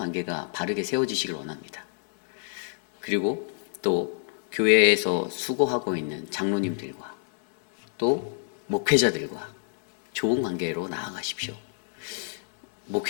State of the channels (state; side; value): silent; right; 58 dB below the other